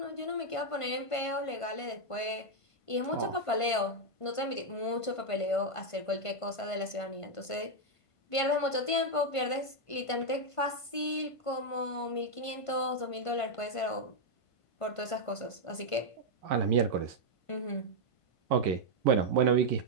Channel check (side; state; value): right; late; 1.5 ms